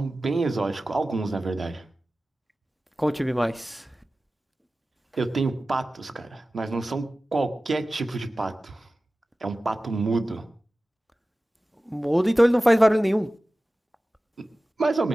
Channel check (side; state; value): both; normal; correlation 0.96